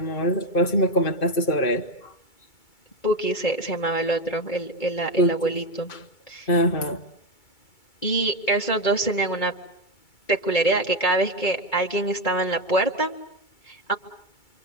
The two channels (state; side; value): late; right; 2.3 ms